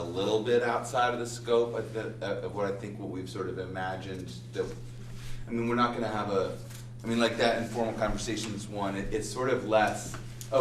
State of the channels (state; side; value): identical; both; correlation 1.00